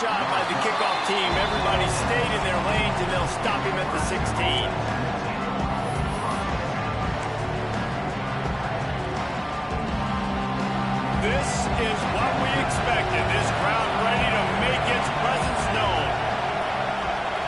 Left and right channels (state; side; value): identical; both; correlation 1.00